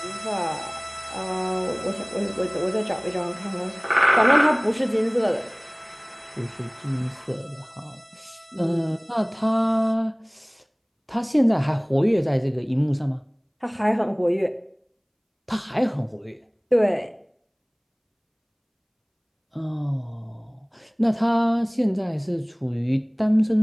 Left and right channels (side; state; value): both; identical; correlation 1.00